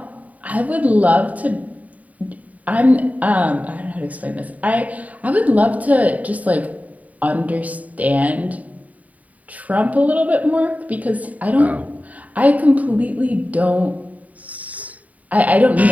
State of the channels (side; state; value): left; late; 0.071 ms